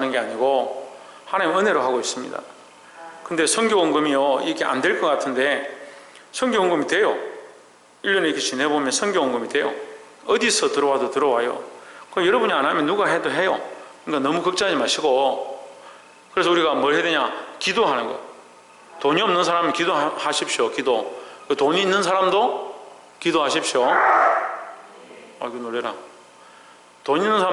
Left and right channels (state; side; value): identical; both; correlation 1.00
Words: 게 아니고 하나님 은혜로 하고 있습니다. 근데 선교원금이요, 이게 안 될 것 같은데 선교원금이 돼요. 1년에 이렇게 지내보면 선교원금이 돼요. 어디서 들어와도 들어와요. 그럼 여러분이 안 하면 누가 해도 해요. 그러니까 너무 걱정하지 마시고, 그래서 우리가 뭘 해야 되냐? 기도하는 거. 돈이 없는 사람은 기도하십시오. 기도. 돈이 있는 사람도 기도하십시오. 아이고 놀래라. 돈 있는